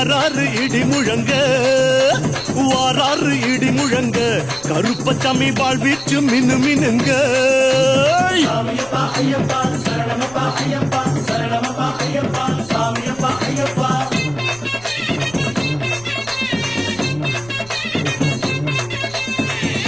இடி முழங்க வாராரு இடி முழங்க கருப்பசாமி வாழ்வீச்சு மினு மினுங்க சாமியப்பா ஐயப்பா சரணமப்பா ஐயப்பா சரணமப்பா ஐயப்பா சாமியப்பா ஐயப்பா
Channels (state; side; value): noise; right; rumble, 22 dB below the sound